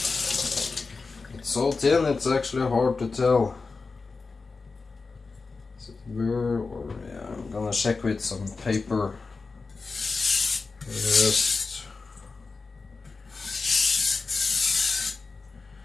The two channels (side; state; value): right; quieter; 4.2 dB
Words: It's so thin, it's actually hard to tell. Is it burr or yeah? I'm gonna check with some paper first.